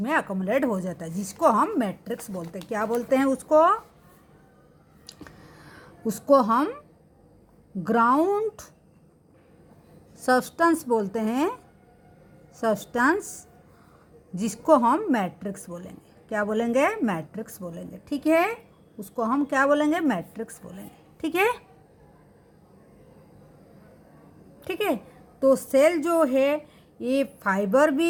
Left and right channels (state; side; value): identical; both; correlation 1.00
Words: अकोमोलेट हो जाता है, जिसको हम मैट्रिक्स बोलते हैं। क्या बोलते हैं उसको? उसको हम ग्राउंड सब्सटेंस बोलते हैं, सब्सटेंस जिसको हम मैट्रिक्स बोलेंगे। क्या बोलेंगे? मैट्रिक्स बोलेंगे। ठीक है, उसको हम क्या बोलेंगे? मैट्रिक्स बोलेंगे। ठीक है, ठीक है। तो सेल जो है ये फाइबर